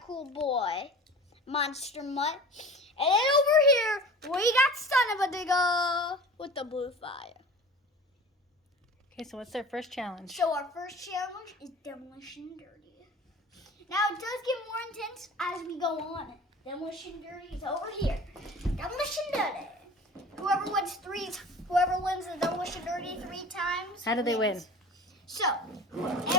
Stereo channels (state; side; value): normal; both; correlation 0.39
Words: cool boy. Monster Mutt. And then over here, we got Son of a Digger with the blue fire. Okay, so what's their first challenge? So our first challenge is Demolition Derby. Now it does get more intense as we go on. Demolition Derby is over here. Demolition Derby. Whoever wins the Demolition Derby 3 times. How do they win? So